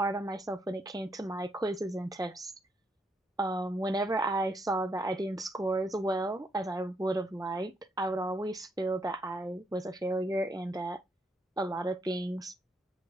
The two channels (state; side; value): normal; both; correlation 0.75